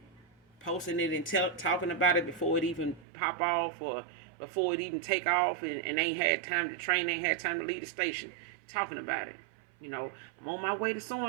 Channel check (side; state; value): left; drops out; at 3.1 s